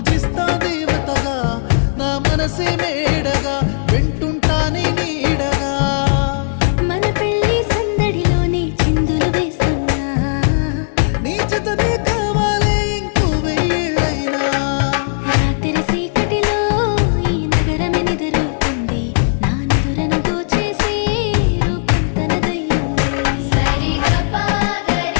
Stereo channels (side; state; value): right; silent; 68 dB below the other